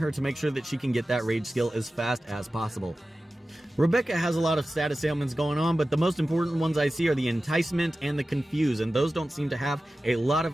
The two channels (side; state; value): both; normal; correlation 0.95